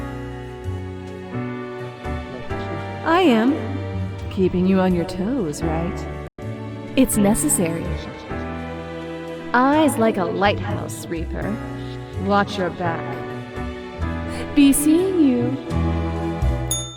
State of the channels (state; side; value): identical; both; correlation 1.00